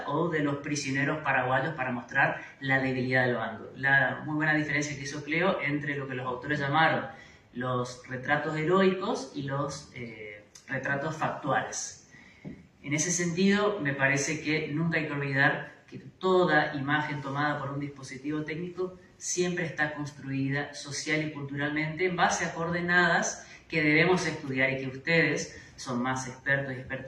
o de los prisioneros paraguayos para mostrar la debilidad del bando. La muy buena diferencia que hizo Cleo entre lo que los autores llamaron los retratos heroicos y los retratos factuales. En ese sentido, me parece que nunca hay que olvidar que toda imagen tomada por un dispositivo técnico siempre está construida social y culturalmente en base a coordenadas que debemos estudiar y que ustedes son más expertos y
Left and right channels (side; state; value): both; identical; correlation 1.00